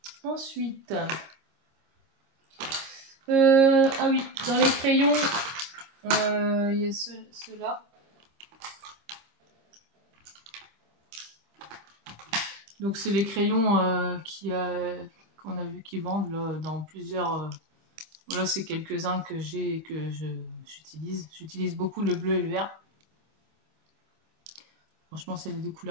Ensuite, ah oui, dans les crayons, il y a ceux-là. Donc c'est les crayons qu'on a vu qui vendent là, dans plusieurs. Voilà, c'est quelques-uns que j'ai et que j'utilise. J'utilise beaucoup le bleu et le vert. Franchement, c'est les deux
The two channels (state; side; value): late; left; 26 ms